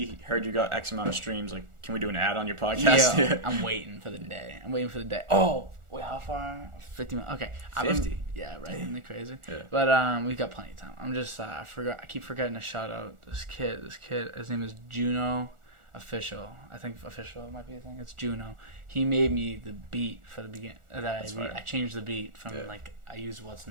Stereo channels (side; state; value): left; late; 1.4 ms